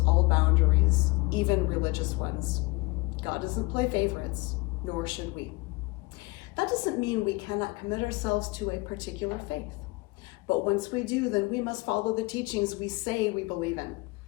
boundaries, even religious ones. God doesn't play favorites, nor should we. That doesn't mean we cannot commit ourselves to a particular faith. But once we do, then we must follow the teachings we say we believe in.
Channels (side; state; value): right; quieter; 24.1 dB